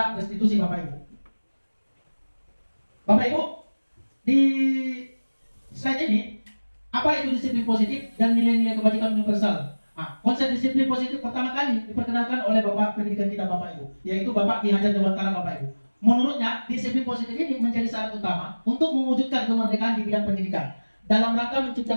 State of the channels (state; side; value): inverted; both; correlation -1.00